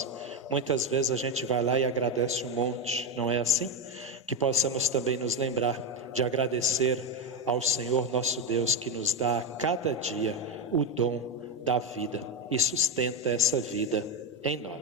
muitas vezes a gente vai lá e agradece um monte, não é assim? Que possamos também nos lembrar de agradecer ao Senhor nosso Deus, que nos dá a cada dia o dom da vida e sustenta essa vida em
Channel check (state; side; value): normal; both; correlation 0.12